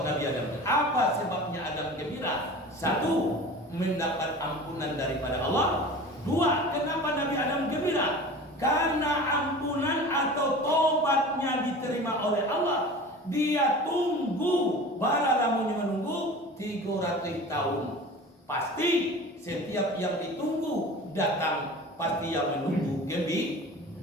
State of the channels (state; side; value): normal; both; correlation 0.38